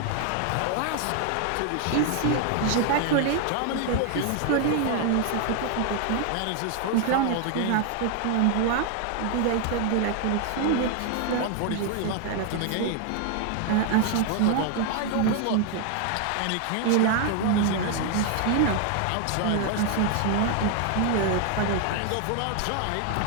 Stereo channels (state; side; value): different; both; correlation 0.00